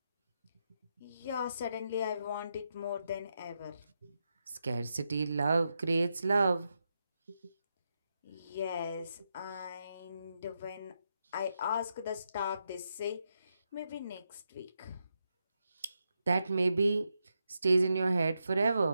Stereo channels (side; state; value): both; inverted; correlation -0.84